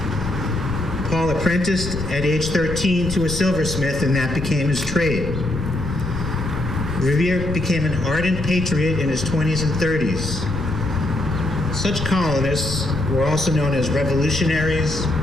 Paul apprenticed at age 13 to a silversmith, and that became his trade. Revere became an ardent patriot in his 20s and 30s. Such colonists were also known as revolutionaries,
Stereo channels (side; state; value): left; noise; rumble, 8 dB below the sound